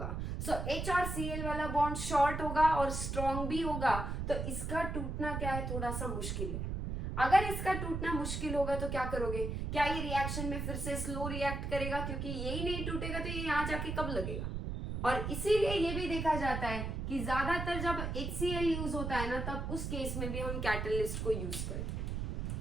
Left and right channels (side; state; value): right; noise; rumble, 3 dB below the sound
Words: सो H और Cl वाला बॉन्ड शॉर्ट होगा और स्ट्रॉन्ग भी होगा, तो इसका टूटना क्या है, थोड़ा सा मुश्किल है। अगर इसका टूटना मुश्किल होगा तो क्या करोगे, क्या ये रिएक्शन में फिर से स्लो रिएक्ट करेगा, क्योंकि यही नहीं टूटेगा तो ये यहाँ जाके कब लगेगा। और इसीलिए ये भी देखा जाता है कि ज्यादातर जब HCl यूज होता है ना, तब उस केस में भी हम कैटलिस्ट को यूज करते